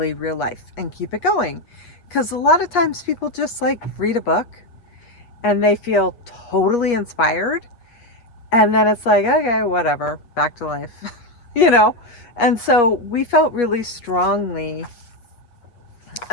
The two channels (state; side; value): late; right; 8.4 ms